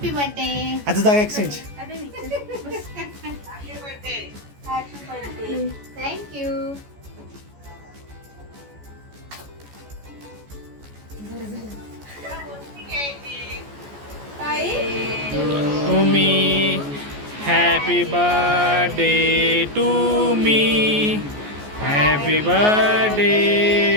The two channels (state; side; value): late; left; 14 ms